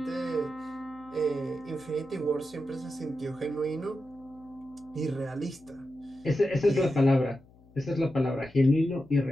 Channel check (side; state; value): left; noise; hum, 26 dB below the sound